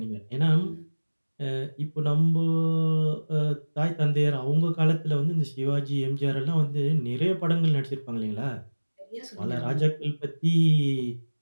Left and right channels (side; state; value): both; inverted; correlation -1.00